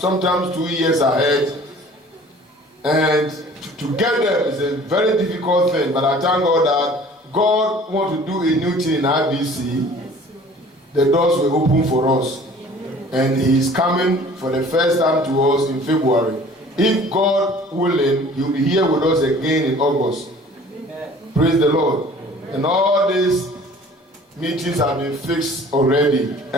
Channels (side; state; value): both; normal; correlation 0.49